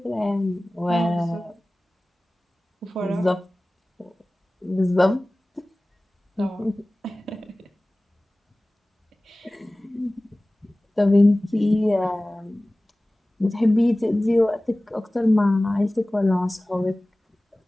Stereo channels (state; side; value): normal; both; correlation 0.98